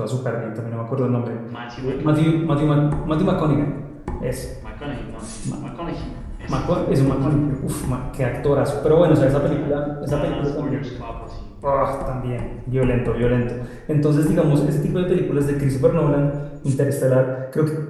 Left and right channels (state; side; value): identical; both; correlation 1.00